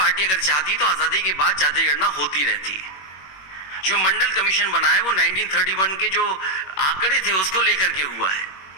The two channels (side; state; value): right; late; 21 ms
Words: अगर चाहती तो आजादी के बाद जाति गणना होती रहती। जो मंडल कमीशन बना है वो 1931 के जो आंकड़े थे उसको लेकर के हुआ है।